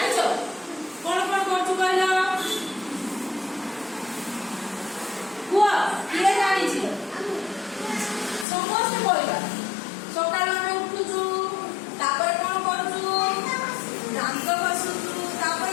କଣ କଣ କରୁଛୁ କହିଲ? କୁହ କିଏ ଜାଣିଛି? ସମସ୍ତେ କହିବା ସକାଳୁ ଆମେ ଉଠୁଛୁ ତାପରେ କଣ କରୁଛୁ? ଦାନ୍ତ ଘଷୁଛୁ ତାପରେ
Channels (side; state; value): right; drops out; at 8.5 s